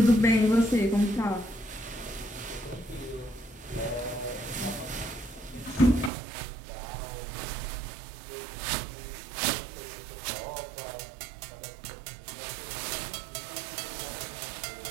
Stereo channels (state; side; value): drops out; left; at 6.1 s